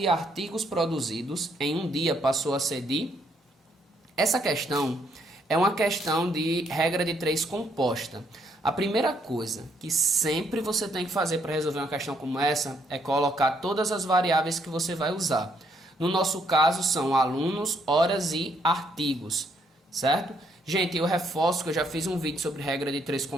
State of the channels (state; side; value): normal; both; correlation 0.71